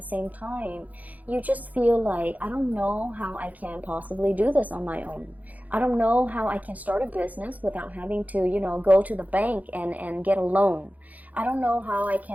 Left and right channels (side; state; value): left; late; 0.077 ms